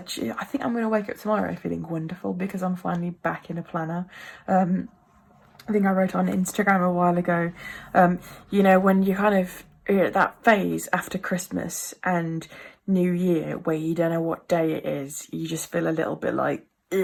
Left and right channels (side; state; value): both; identical; correlation 1.00